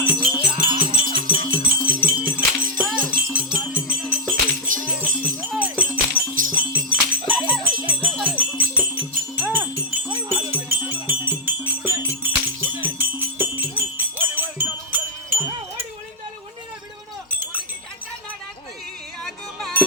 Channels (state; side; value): normal; both; correlation -0.04